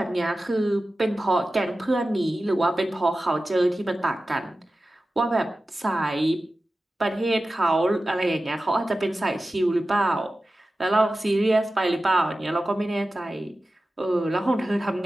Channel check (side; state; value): both; normal; correlation 0.95